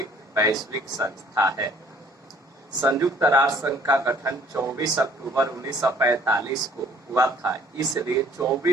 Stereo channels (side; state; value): both; normal; correlation 0.57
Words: वैश्विक संस्था है। संयुक्त राष्ट्र संघ का गठन 24 अक्टूबर 1945 को हुआ था, इसलिए